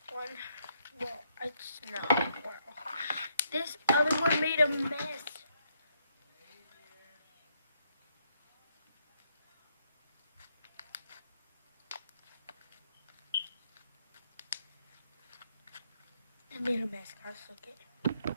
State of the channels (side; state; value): both; inverted; correlation -0.74